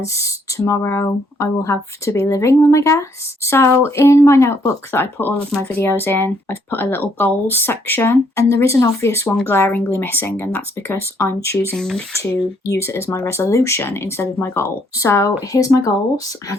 tomorrow I will have to be living them, I guess. So in my notebook that I put all of my videos in, I've put a little goals section, and there is an obvious one glaringly missing, and that's because I'm choosing to use it as my resolution instead of my goal. So here's my goals and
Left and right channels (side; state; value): both; normal; correlation 0.69